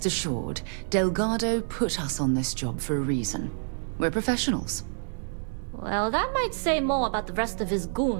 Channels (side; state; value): left; silent; 60 dB below the other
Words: assured, Delgado put us on this job for a reason. We're professionals. Well, that might say more about the rest of his